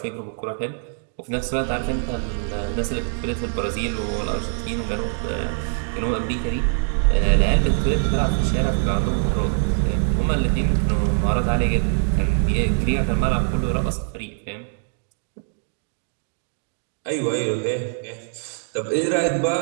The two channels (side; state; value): left; silent; digital silence